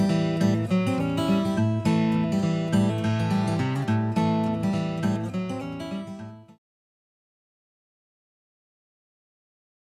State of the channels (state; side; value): identical; both; correlation 1.00